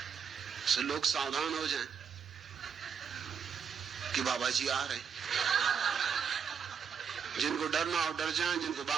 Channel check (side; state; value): left; quieter; 6.9 dB